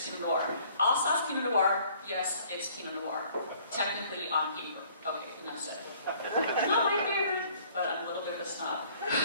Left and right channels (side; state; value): both; inverted; correlation -0.58